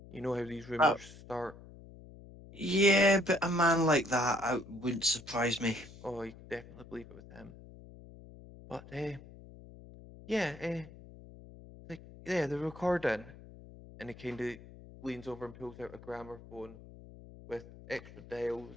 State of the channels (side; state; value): left; noise; hum, 18 dB below the sound